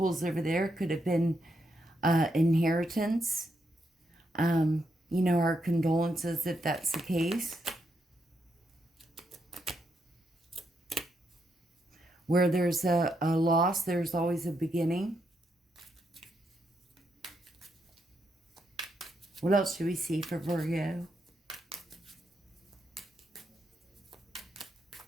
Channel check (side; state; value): both; normal; correlation 0.80